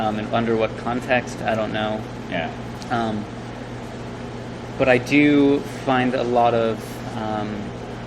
under what context, I don't know. Yeah. But I do find a lot of,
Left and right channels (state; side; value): identical; both; correlation 1.00